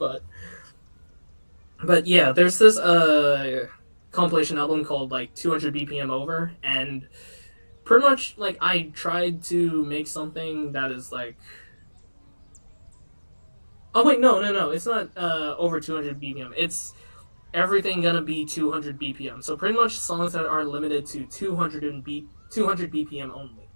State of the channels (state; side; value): inverted; both; correlation -1.00